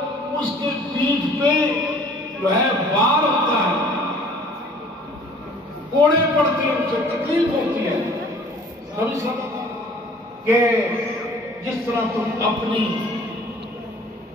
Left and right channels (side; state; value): both; normal; correlation 0.51